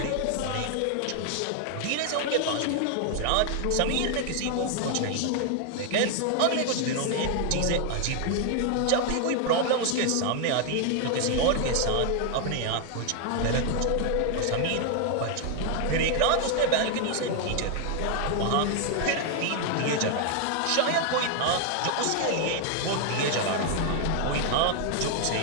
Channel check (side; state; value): both; different; correlation 0.00